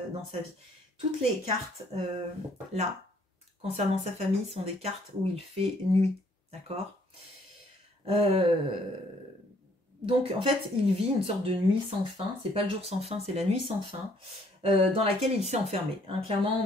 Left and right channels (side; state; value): both; normal; correlation 0.64